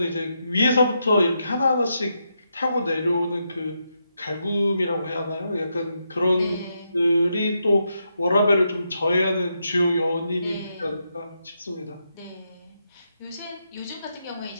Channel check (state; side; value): inverted; both; correlation -0.82